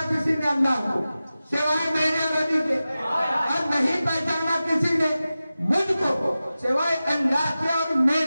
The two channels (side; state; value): both; inverted; correlation -0.95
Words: किसी ने अल्लाह को सिवाय मेरे नबी के, और नहीं पहचाना किसी ने मुझको सिवाय अल्लाह के और